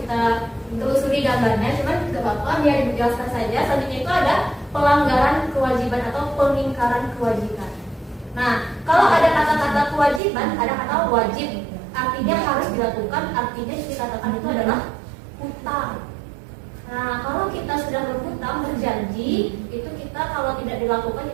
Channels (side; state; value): left; drops out; at 10.2 s